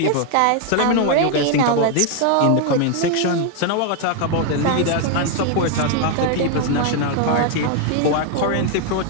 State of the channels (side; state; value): both; different; correlation 0.01